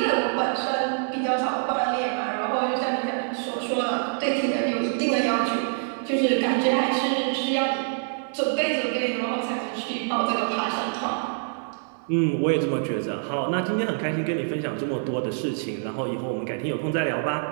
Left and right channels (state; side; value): silent; left; digital silence